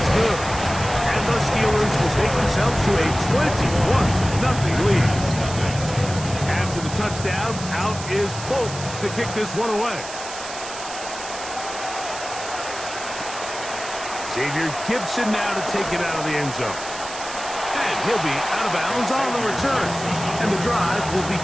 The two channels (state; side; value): noise; right; hiss, 10 dB below the sound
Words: good. And the Steelers will take themselves to a 21-0 lead. After the touchdown, out is Bolt to kick this one away. Xavier Gibson now to take it out of the end zone. And he'll be out of bounds on the return. And the drive will